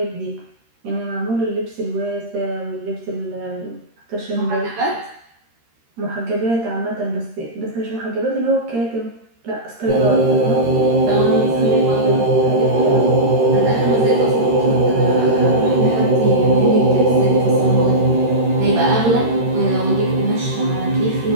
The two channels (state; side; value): late; left; 13 ms